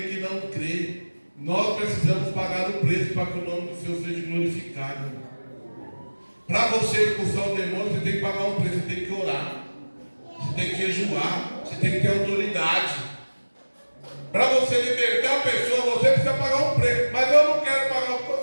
que não crê. Nós precisamos pagar o preço para que o nome do Senhor seja glorificado. Para você expulsar o demônio, você tem que pagar um preço, você tem que orar, você tem que jejuar, você tem que ter autoridade. Para você libertar a pessoa, você precisa pagar um preço. Mas eu não quero pagar o preço,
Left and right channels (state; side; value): inverted; both; correlation -1.00